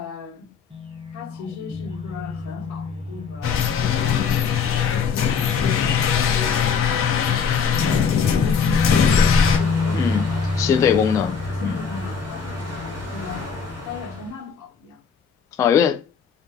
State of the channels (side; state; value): right; quieter; 6.3 dB